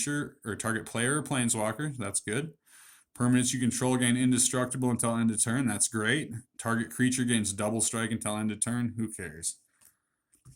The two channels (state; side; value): identical; both; correlation 1.00